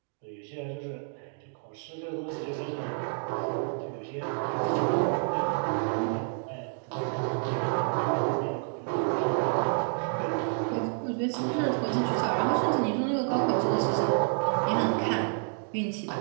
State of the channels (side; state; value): left; silent; 56 dB below the other